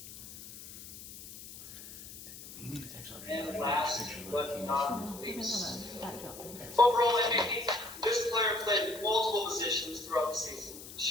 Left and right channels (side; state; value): left; noise; hiss, 14 dB below the sound